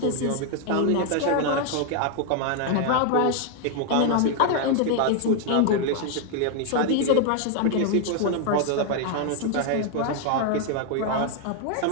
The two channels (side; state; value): both; different; correlation 0.00